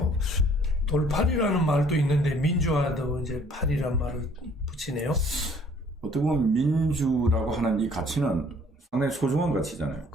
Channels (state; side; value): normal; both; correlation 0.58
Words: 돌파리라는 말도 있는데 민주화도 이제 파리란 말을 붙이네요. 어떻게 보면 민주라고 하는 이 가치는 상당히 소중한 가치잖아요.